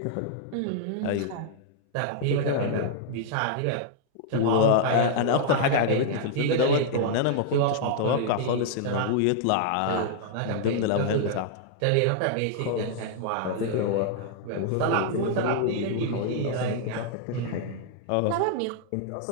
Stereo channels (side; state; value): both; different; correlation -0.01